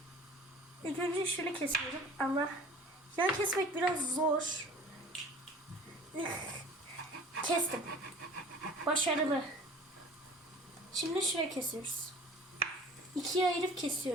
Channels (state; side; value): normal; both; correlation 0.45